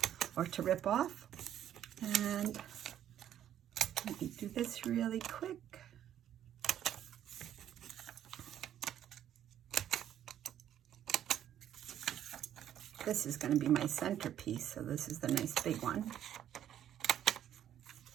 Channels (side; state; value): left; quieter; 10.7 dB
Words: or to rip off. And let me do this really quick. This is going to be my centerpiece, so this is the nice big one.